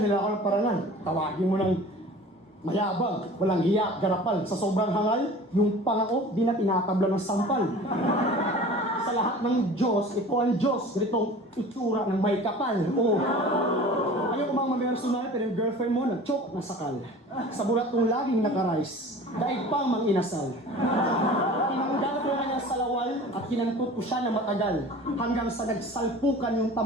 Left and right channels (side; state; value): both; normal; correlation 0.42